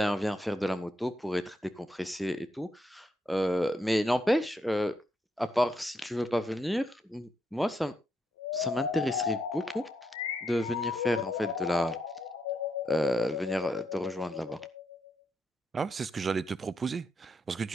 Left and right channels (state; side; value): normal; both; correlation 0.79